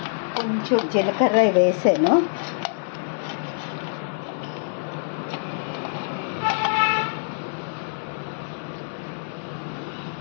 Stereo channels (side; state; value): right; silent; 62 dB below the other